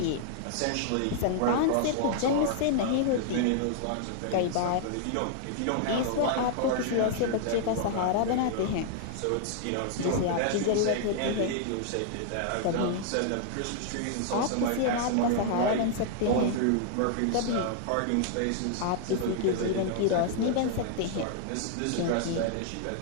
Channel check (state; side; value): different; both; correlation 0.00